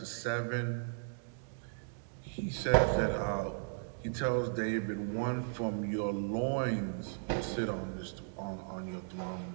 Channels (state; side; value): silent; left; digital silence